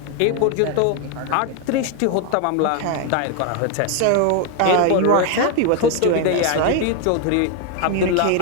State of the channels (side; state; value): both; different; correlation 0.01